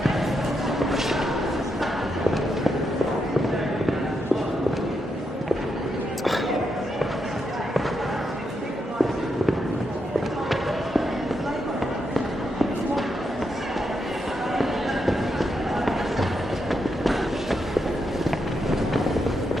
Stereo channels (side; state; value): both; normal; correlation 0.82